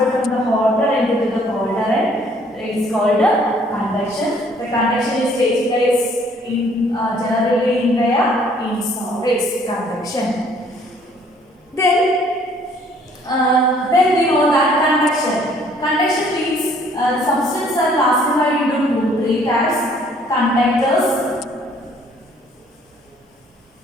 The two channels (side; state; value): both; normal; correlation 0.60